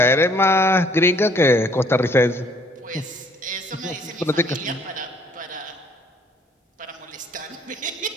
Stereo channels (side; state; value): both; normal; correlation 0.60